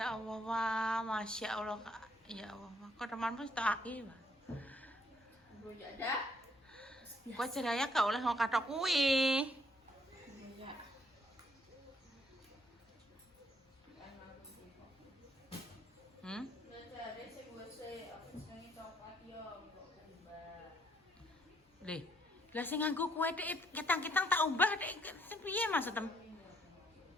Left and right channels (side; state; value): both; normal; correlation 0.68